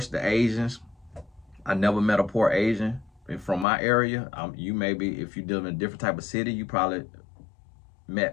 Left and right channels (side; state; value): right; drops out; at 3.7 s